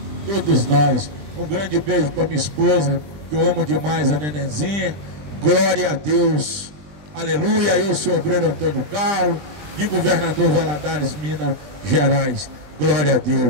todos nós. Um grande beijo para minha esposa, que eu amo demais, a nenenzinha. Glória a Deus, aleluia. Eu sou o obreiro Antônio Carlos, de Governador Valadares, Minas Gerais. Glória a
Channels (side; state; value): left; late; 20 ms